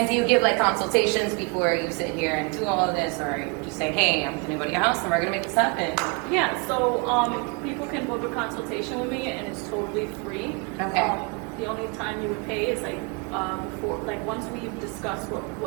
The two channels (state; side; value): quieter; left; 32.6 dB